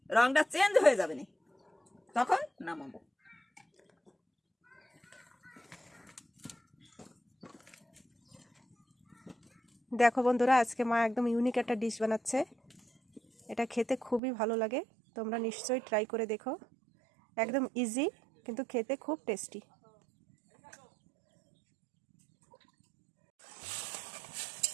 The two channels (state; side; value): drops out; left; at 14.2 s